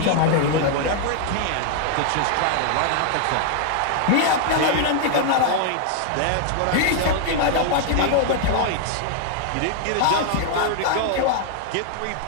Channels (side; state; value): both; different; correlation 0.00